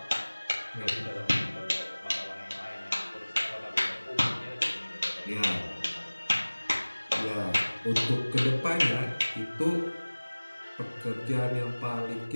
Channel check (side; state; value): both; inverted; correlation -1.00